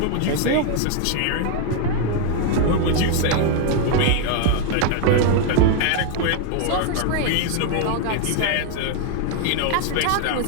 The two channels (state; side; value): different; both; correlation 0.00